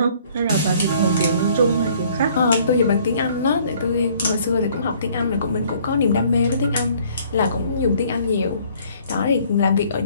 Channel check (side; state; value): both; inverted; correlation -0.59